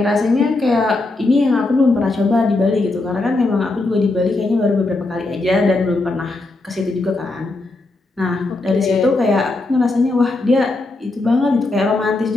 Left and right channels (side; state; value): right; quieter; 3.1 dB